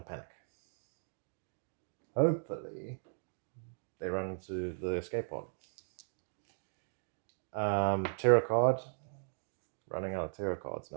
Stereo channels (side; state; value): left; silent; digital silence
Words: to panic. Hopefully, they run into the escape pod. Terror card. Running out of terror cards